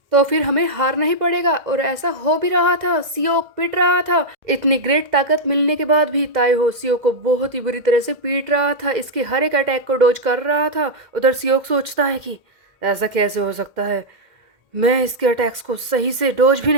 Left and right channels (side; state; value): left; late; 2.1 ms